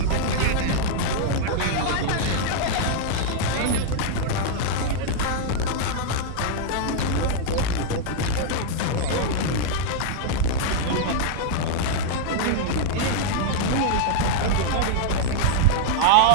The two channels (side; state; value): both; different; correlation -0.01